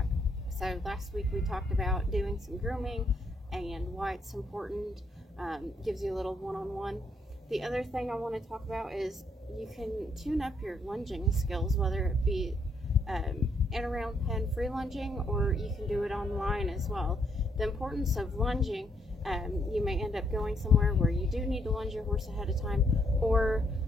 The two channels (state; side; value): normal; both; correlation 0.74